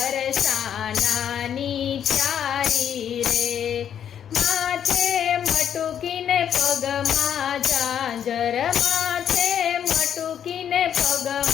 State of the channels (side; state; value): right; quieter; 9.1 dB